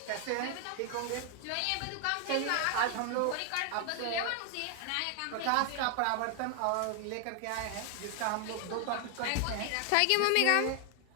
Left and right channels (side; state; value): both; different; correlation 0.00